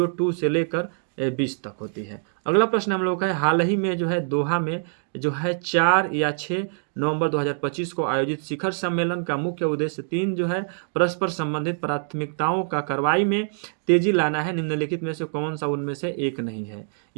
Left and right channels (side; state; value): left; silent; digital silence